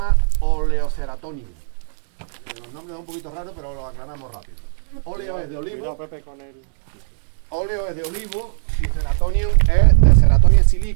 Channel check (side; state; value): left; silent; digital silence